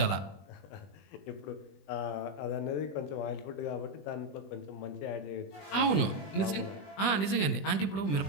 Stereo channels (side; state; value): right; late; 20 ms